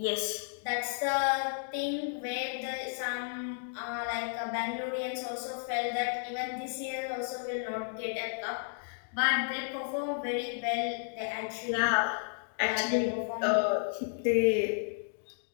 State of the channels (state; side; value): silent; right; digital silence